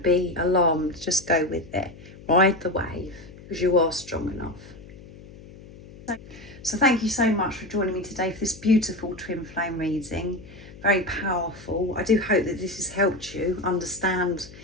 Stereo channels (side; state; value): left; noise; hum, 18 dB below the sound